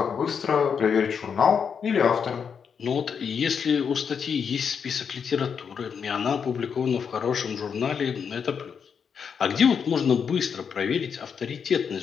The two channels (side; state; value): right; quieter; 6.7 dB